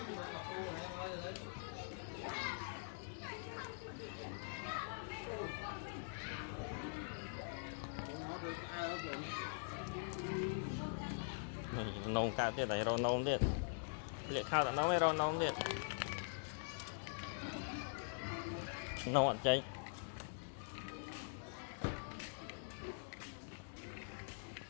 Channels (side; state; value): right; silent; digital silence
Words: nông cao tiết này rồi nông tiết liệt khao tận nó mới rồi nông tiết nông ăn cháy